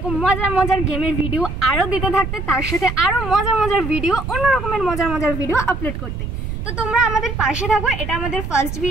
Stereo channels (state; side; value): noise; right; rumble, 6 dB below the sound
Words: মজার মজার গেমের ভিডিও আরও দিতে থাকতে, তার সাথে আরও মজার মজার ভিডিও, অন্য রকমের মজার মজার ভিডিও আপলোড করতে। তো তোমরা আমাদের পাশে থাকো, এটা আমাদের ফার্স্ট